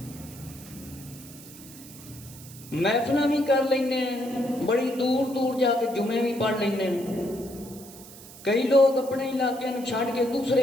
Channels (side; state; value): right; noise; hiss, 18 dB below the sound